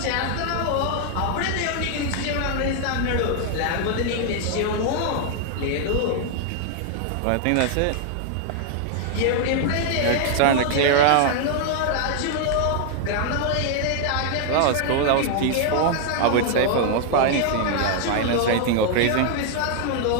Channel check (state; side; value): different; both; correlation 0.00